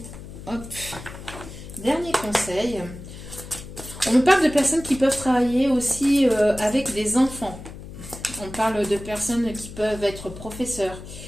conseil. On me parle de personnes qui peuvent travailler aussi avec des enfants. On parle de personnes qui peuvent être professeurs.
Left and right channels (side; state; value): left; noise; hum, 13 dB below the sound